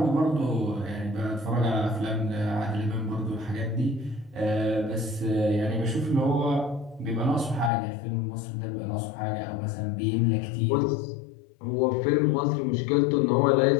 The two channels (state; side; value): drops out; right; at 7.7 s